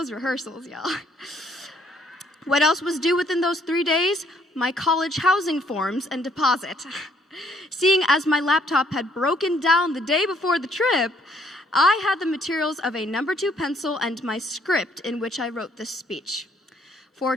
rehearsals, y'all. What else was due within those 3 days? My college housing forms and deposit. Seeing as my laptop had broken down the day before the trip, I had the materials of a No. 2 pencil and my script in which I wrote this speech.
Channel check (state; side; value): normal; both; correlation 0.66